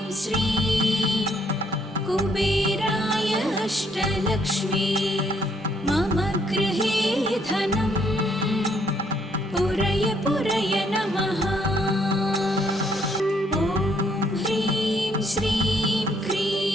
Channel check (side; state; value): both; normal; correlation 0.69